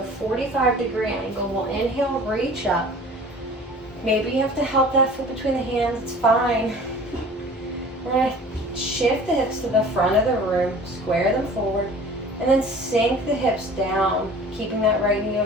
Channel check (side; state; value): both; normal; correlation 0.44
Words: 45-degree angle. We'll inhale, reach up. Maybe you have to help that foot between the hands. It's fine. We're going to shift the hips to the front of the room. Square them forward. And then sink the hips down. Keeping that right knee